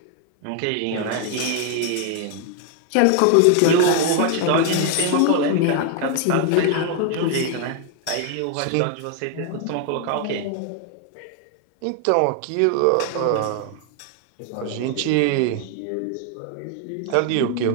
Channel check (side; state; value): both; different; correlation 0.00